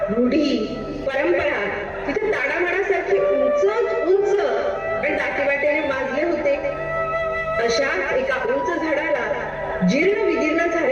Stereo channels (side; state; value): both; identical; correlation 1.00